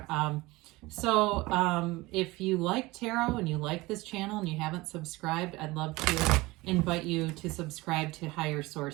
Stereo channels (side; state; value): left; quieter; 21.1 dB